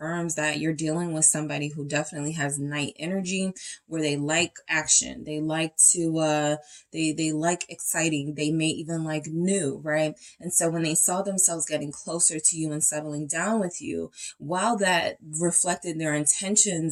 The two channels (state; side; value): identical; both; correlation 1.00